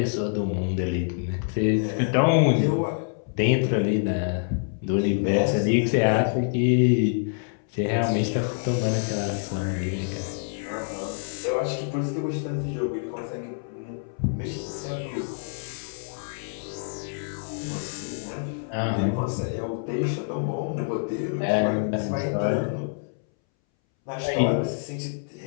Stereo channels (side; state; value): right; silent; 61 dB below the other